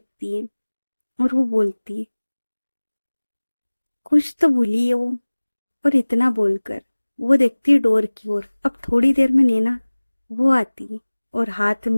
है और वो बोलती, कुछ तो भूली है वो। और इतना बोलकर वो देखती है डोर की ओर। अब थोड़ी देर में नैना वो आती है और हाथ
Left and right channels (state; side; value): inverted; both; correlation -1.00